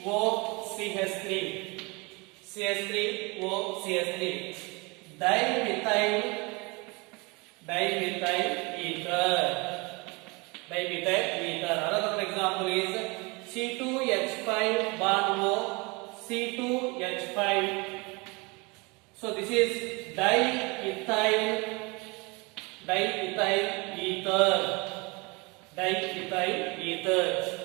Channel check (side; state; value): left; quieter; 27.6 dB